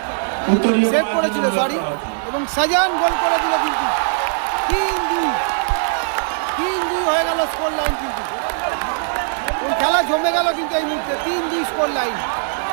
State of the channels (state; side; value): silent; left; digital silence